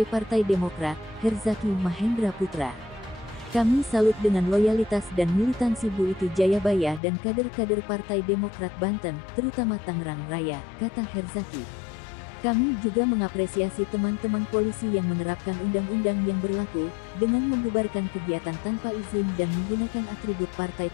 Partai Demokrat, Herzaki Mahendra Putra. Kami salut dengan loyalitas dan militansi Bu Iti Jayabaya dan kader-kader Partai Demokrat Banten, terutama Tangerang Raya, kata Herzaki. Kami juga mengapresiasi teman-teman polisi yang menerapkan undang-undang yang berlaku, dengan membubarkan kegiatan tanpa izin dan menggunakan atribut partai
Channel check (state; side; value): drops out; right; at 7.0 s